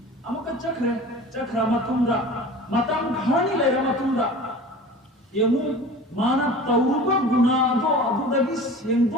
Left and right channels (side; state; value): both; normal; correlation 0.39